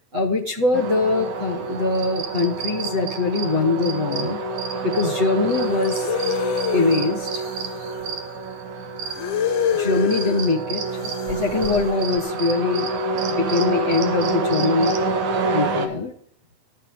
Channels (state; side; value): late; left; 8.0 ms